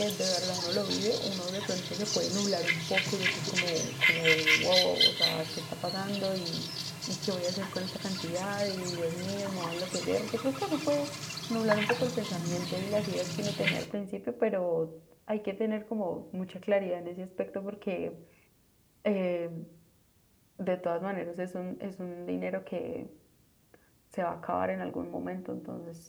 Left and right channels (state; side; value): identical; both; correlation 1.00